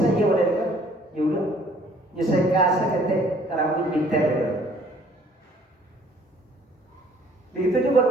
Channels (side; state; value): both; normal; correlation 0.58